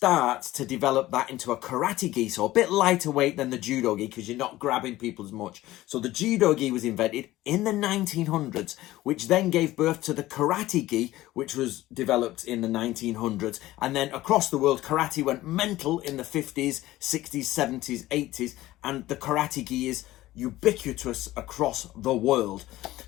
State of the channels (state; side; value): quieter; right; 16.4 dB